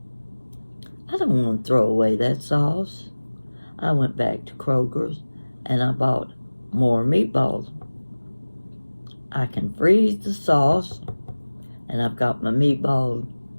I don't want to throw away that sauce. I went back to Kroger's and I bought more meatballs. I can freeze the sauce, and I've got my meatballs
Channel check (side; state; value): both; inverted; correlation -1.00